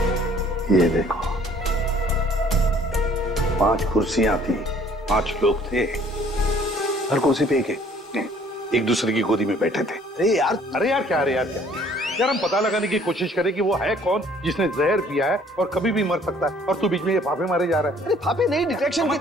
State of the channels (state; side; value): normal; both; correlation 0.58